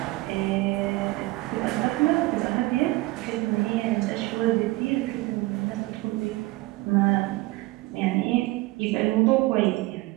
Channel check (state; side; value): quieter; left; 20.6 dB